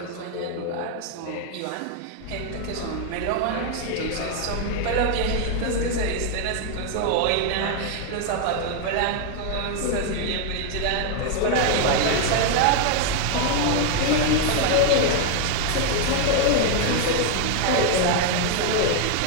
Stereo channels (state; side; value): different; both; correlation 0.00